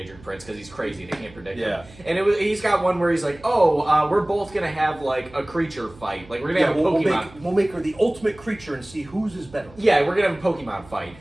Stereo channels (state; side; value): noise; right; hum, 22 dB below the sound